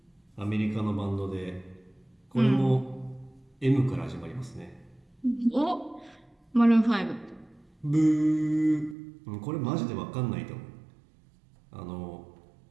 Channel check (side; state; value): left; drops out; at 9.0 s